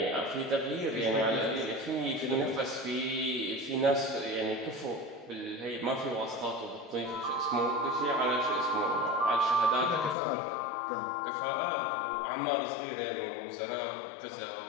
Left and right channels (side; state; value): right; drops out; at 10.2 s